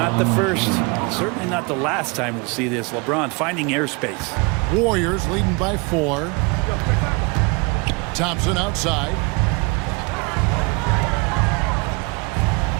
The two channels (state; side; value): quieter; left; 28.6 dB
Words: the first, certainly not the last time we'll see this. LeBron finding airspace. Warriors leading by 4. Thompson outside.